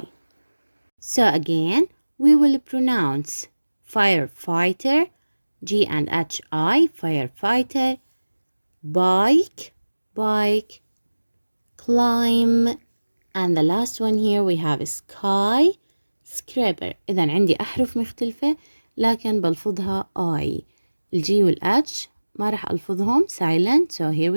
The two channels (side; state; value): both; inverted; correlation -1.00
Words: So again, we will pronounce firefighter, G and H I, firefighter, bike, climb, and the last one here we have skyscraper. إذا عندي أحرف مختلفة لكن بلفظها I. الجي والH ما راح ألفظهم silent. So here